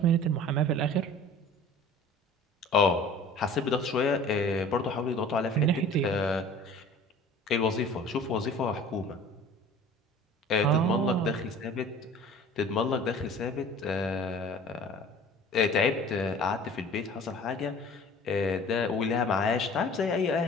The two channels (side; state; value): both; normal; correlation 0.45